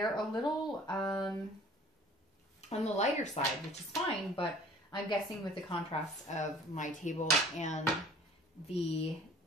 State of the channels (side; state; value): both; normal; correlation 0.50